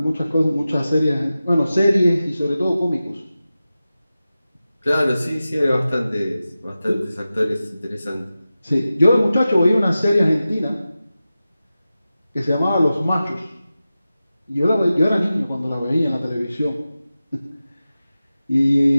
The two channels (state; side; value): inverted; both; correlation -0.94